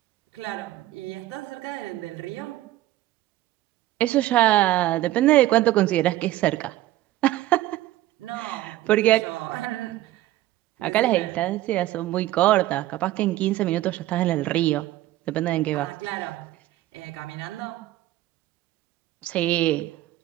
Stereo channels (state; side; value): quieter; left; 15.4 dB